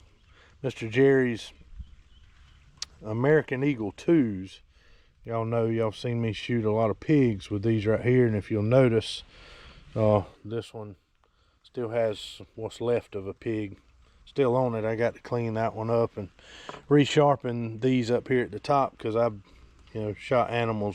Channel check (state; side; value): identical; both; correlation 1.00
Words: Mr. Jerry's American Eagle 2s. Y'all know, y'all seen me shoot a lot of pigs with these right here, and if you'll notice, this one still has what's left of a pig still on it. I got to clean that one up and resharpen these up here at the top, because I've shot